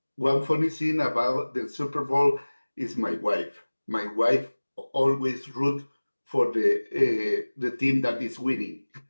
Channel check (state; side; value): inverted; both; correlation -1.00